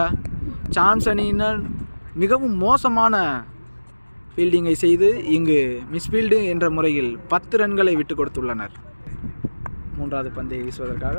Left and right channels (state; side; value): inverted; both; correlation -1.00